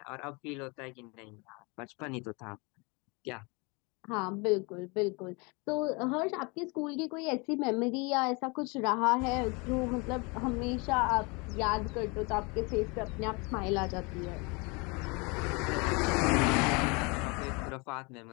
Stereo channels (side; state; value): right; quieter; 29.1 dB